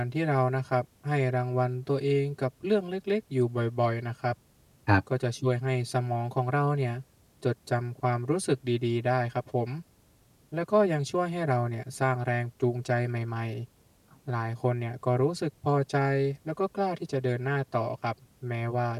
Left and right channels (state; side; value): identical; both; correlation 1.00